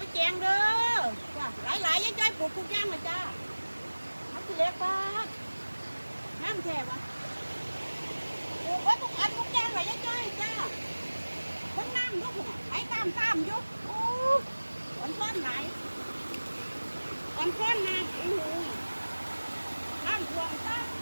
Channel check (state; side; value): inverted; both; correlation -1.00